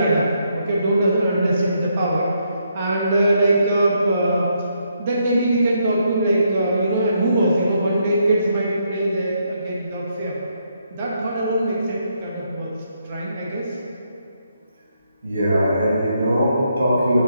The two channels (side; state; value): both; inverted; correlation -0.76